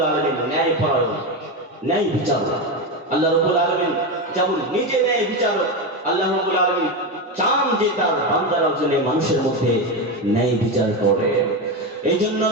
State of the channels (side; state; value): both; normal; correlation 0.14